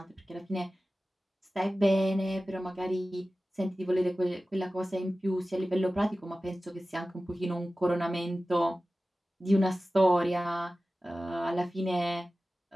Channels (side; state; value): both; normal; correlation 0.95